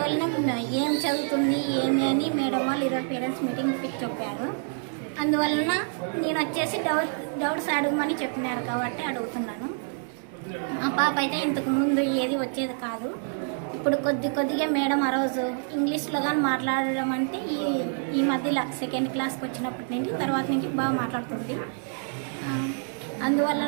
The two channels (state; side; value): silent; left; 56 dB below the other